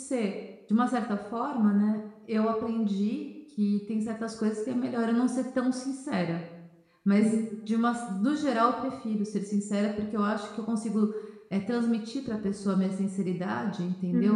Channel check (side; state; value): both; identical; correlation 1.00